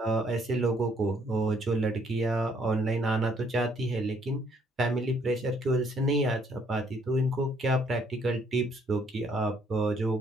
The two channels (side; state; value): both; normal; correlation 0.66